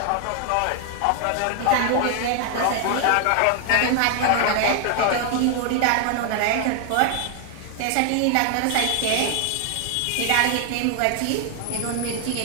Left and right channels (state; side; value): different; both; correlation 0.00